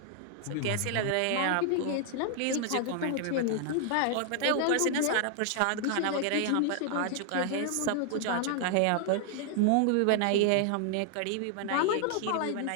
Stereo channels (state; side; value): different; both; correlation 0.00